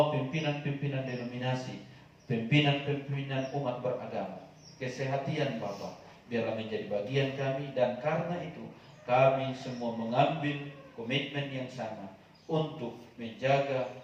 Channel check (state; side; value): identical; both; correlation 1.00